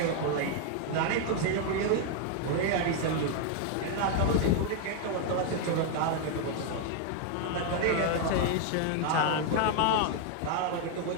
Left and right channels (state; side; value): different; both; correlation 0.00